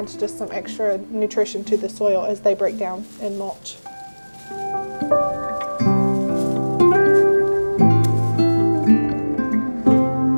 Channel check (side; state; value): both; inverted; correlation -1.00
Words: just some extra nutrition to the soil as they break down and mulch.